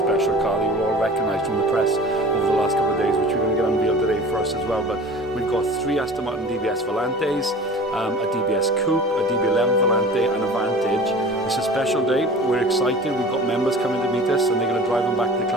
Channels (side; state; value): both; normal; correlation 0.41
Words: car that you all recognised from the press over the last couple of days, which we're going to get unveiled today for us as well. But we've got 3 Aston Martin DBS Volantes, a DBS Coupe, a DB11 Volante and a Vantage. It's a special day. We're excited. We've got members coming to meet us and they're going to drive them back to the